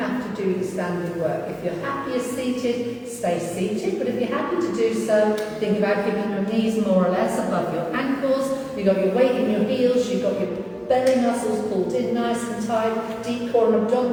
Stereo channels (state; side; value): identical; both; correlation 1.00